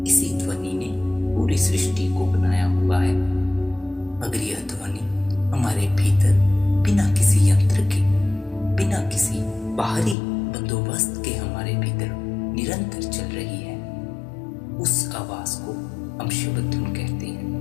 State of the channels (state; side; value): drops out; right; at 10.2 s